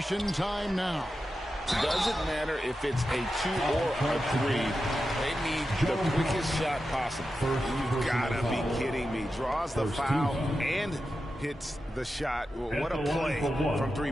time now. Doesn't matter if it's a 2 or a 3. They need the quickest shot possible. You've got to be kidding me. Draws the foul and hits the shot. What a play from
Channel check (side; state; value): both; normal; correlation 0.90